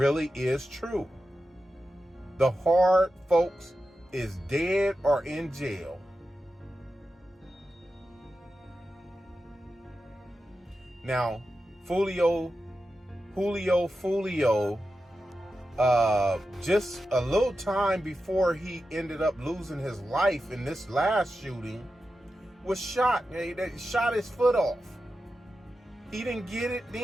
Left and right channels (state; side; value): normal; both; correlation 0.91